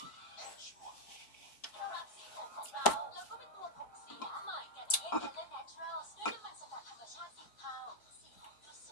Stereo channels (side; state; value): right; late; 4.6 ms